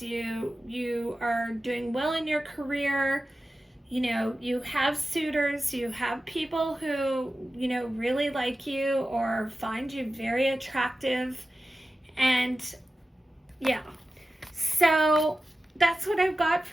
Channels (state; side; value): normal; both; correlation 0.94